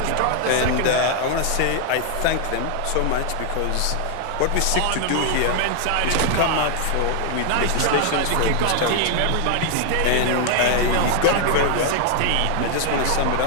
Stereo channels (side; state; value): both; different; correlation 0.00